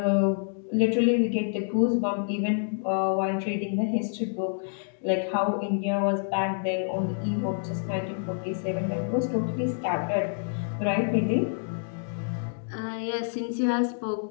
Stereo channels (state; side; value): silent; right; digital silence